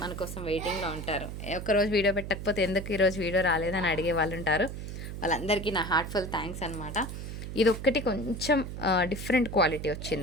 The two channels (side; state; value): right; noise; hum, 7 dB below the sound